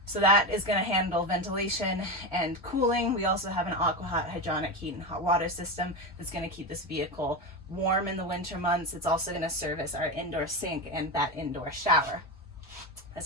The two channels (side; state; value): both; normal; correlation 0.18